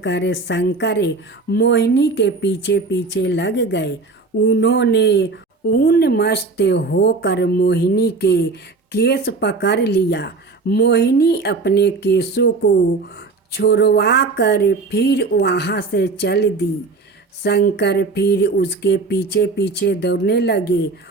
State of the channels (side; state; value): left; quieter; 3.9 dB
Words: कर शंकर मोहिनी के पीछे पीछे लग गए। उन्होंने उन्मस्त होकर मोहिनी के केस पकड़ लिया। मोहिनी अपने केसों को छुड़वा कर फिर वहाँ से चल दी। शंकर फिर उसके पीछे पीछे दौड़ने लगे।